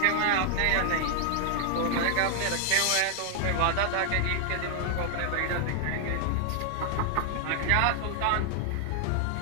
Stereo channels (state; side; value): different; both; correlation 0.00